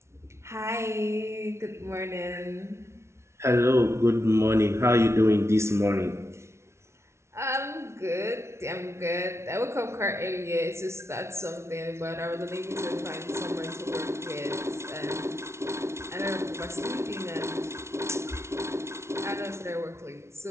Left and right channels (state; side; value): late; left; 0.13 ms